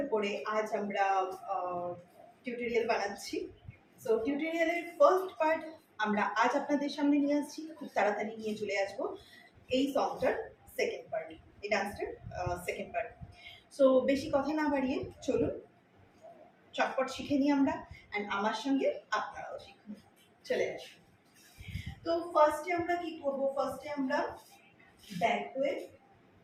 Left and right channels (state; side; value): identical; both; correlation 1.00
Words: উপরে আজ আমরা টিউটোরিয়াল বানাচ্ছি। সো টিউটোরিয়ালের ফার্স্ট পার্ট আমরা আজ আপনাদের সামনে নিয়ে আসছি, খুব তাড়াতাড়ি নিয়ে চলে আসবো এই সংটার সেকেন্ড পার্ট, এই ডান্সটার সেকেন্ড পার্ট। সো বেশি কথা না বাড়িয়ে চলুন চটপট শিখে নিই আমরা, অ্যান্ড আমার সঙ্গে আপনারাও শিখুন। চলে আসুন। তো ফার্স্টে আমরা কি করব? ফার্স্টে আমরা ব্যাক হয়ে